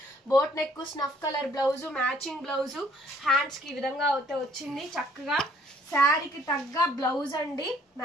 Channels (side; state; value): both; normal; correlation 0.61